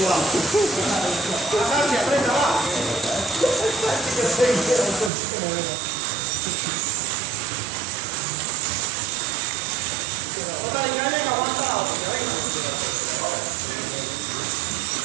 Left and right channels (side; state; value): left; drops out; at 5.1 s